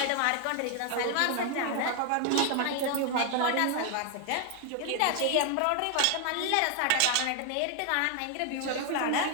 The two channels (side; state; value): both; different; correlation 0.00